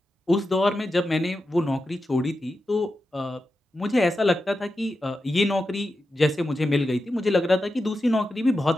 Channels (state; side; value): normal; both; correlation 0.90